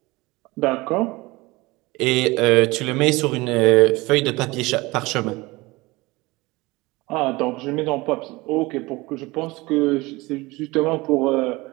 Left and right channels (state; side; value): quieter; left; 22.1 dB